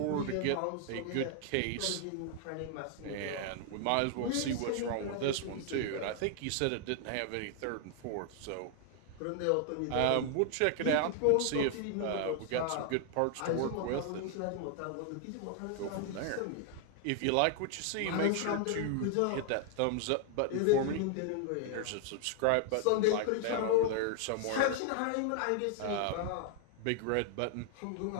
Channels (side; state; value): both; different; correlation 0.00